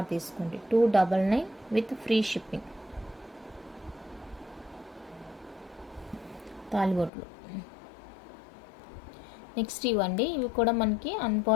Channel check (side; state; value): right; drops out; at 7.1 s